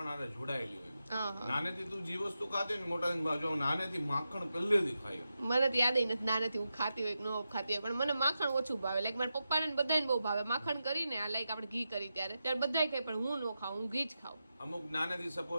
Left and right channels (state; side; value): inverted; both; correlation -0.89